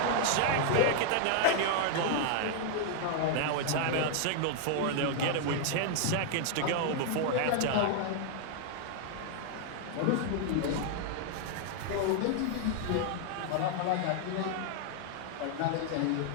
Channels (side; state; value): both; different; correlation -0.01